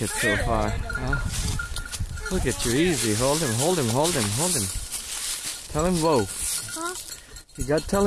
it so far? Huh? Look at you, easy. Hold him, hold him, hold him, hold him. Tell him whoa. Huh? You got to tell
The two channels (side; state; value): both; identical; correlation 1.00